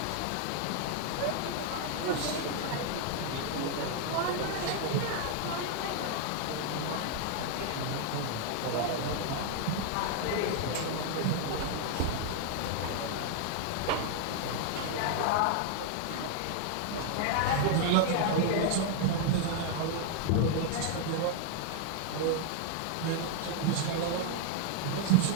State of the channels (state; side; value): different; both; correlation 0.00